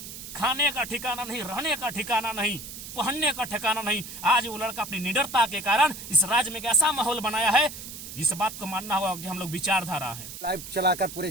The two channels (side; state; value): right; noise; hiss, 11 dB below the sound